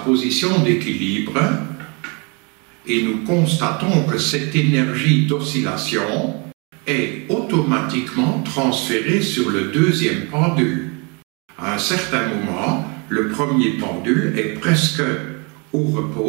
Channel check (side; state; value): left; quieter; 31.9 dB